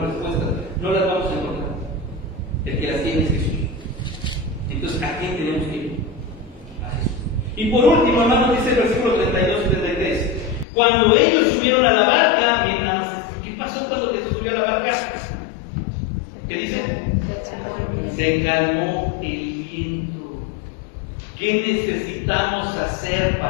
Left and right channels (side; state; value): right; drops out; at 10.7 s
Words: respuestas. No las vamos a encontrar. El que las tiene es Jesús. Entonces, ¿a quién tenemos que ir? A Jesús. Y por último, hermanos, dice el versículo 32 y 33. Cuando ellos subieron a la barca, miren nada más, ¿qué pasó cuando Jesús subió a la barca? ¿Qué dice? Se calmó el viento. ¿Qué necesitamos hacer